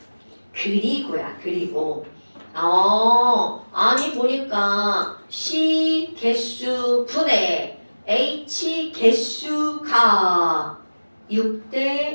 그리고 아니 보니까 C 개수 분의 H 개수가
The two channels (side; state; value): both; inverted; correlation -1.00